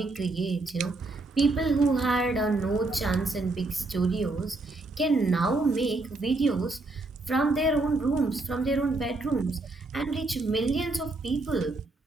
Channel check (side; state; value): left; quieter; 3.1 dB